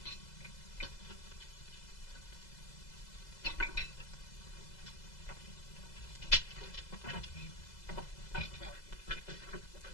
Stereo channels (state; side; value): late; right; 2.0 ms